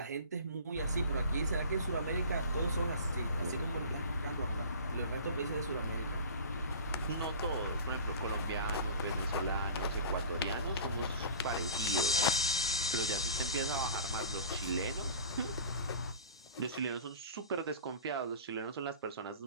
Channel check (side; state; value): both; inverted; correlation -0.40